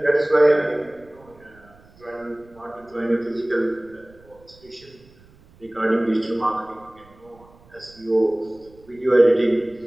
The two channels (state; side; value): noise; right; rumble, 27 dB below the sound